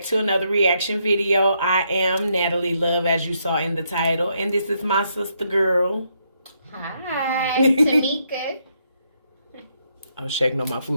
to another reaction video. I am Natalie Love, as you saw in the title, and this is my sister girl. Hi, Tamika. Oh, shaking on my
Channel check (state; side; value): inverted; both; correlation -0.76